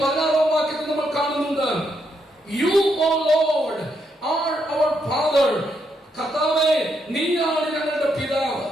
16-ാം വാക്യത്തിൽ നമ്മൾ കാണുന്നുണ്ട്, യു ഓ ലോർഡ് ആർ അവർ ഫാദർ. കർത്താവേ, നീയാണ് ഞങ്ങളുടെ പിതാവ്.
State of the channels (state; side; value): normal; both; correlation 0.78